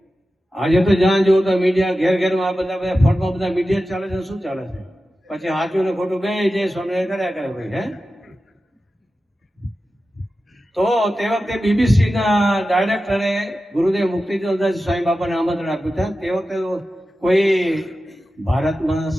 આજે તો જ્યાં જુઓ તો મીડિયા, ઘેરમાં આ બધા ફોનમાં બધા મીડિયા ચાલે છે. શું ચાલે છે? પછી સાચું ને ખોટું બે જે સ્વામિનારાયણ કર્યા કરે ભાઈ. હે, તો તે વખતે બીબીસીના ડાયરેક્ટરે ગુરુદેવ મુક્તિદાસ સ્વામી બાપાને આમંત્રણ આપ્યું હતા. તે વખતે કોઈ ભારતમાં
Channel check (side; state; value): both; normal; correlation 0.93